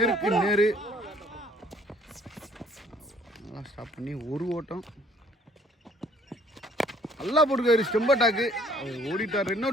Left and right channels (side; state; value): both; normal; correlation 0.60